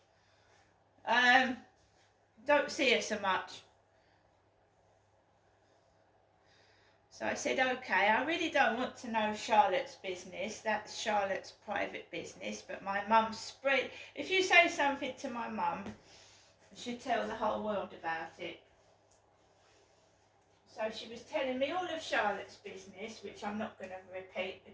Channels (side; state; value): both; identical; correlation 1.00